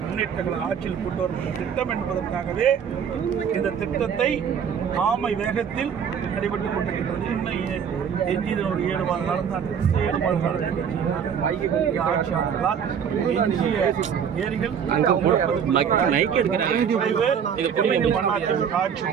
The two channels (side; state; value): left; quieter; 7.6 dB